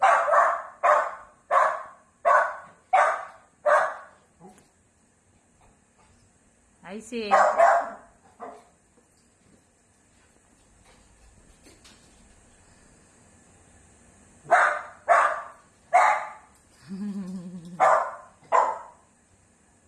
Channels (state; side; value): identical; both; correlation 1.00